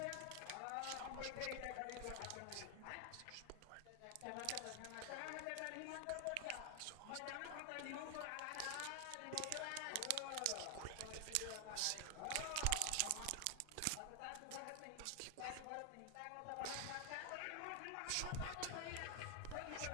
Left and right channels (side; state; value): both; different; correlation 0.00